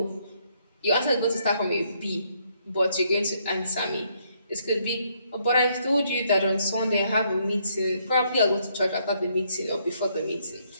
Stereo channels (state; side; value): inverted; both; correlation -0.71